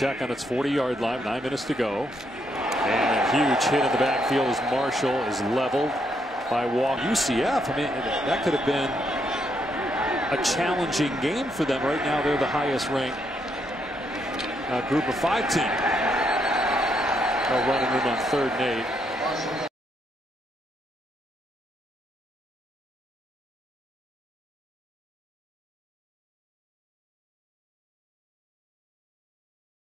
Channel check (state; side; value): normal; both; correlation 0.76